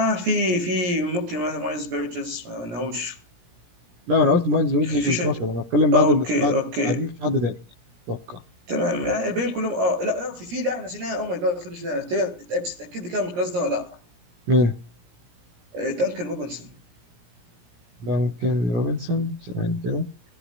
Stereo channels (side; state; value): left; late; 17 ms